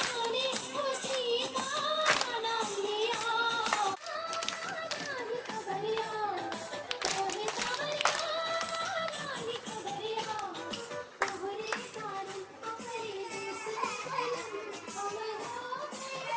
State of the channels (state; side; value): identical; both; correlation 1.00